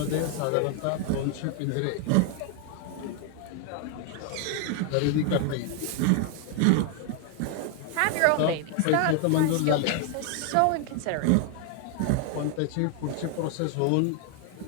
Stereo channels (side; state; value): both; different; correlation 0.01